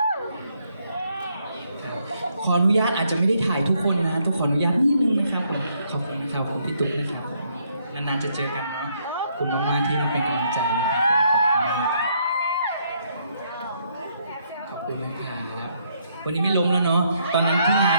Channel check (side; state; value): both; inverted; correlation -0.72